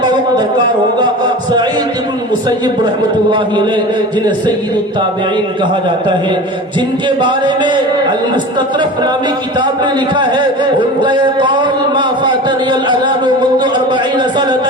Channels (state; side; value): normal; both; correlation 0.34